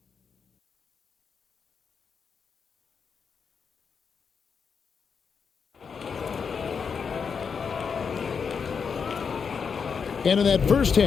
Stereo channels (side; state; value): right; quieter; 6.1 dB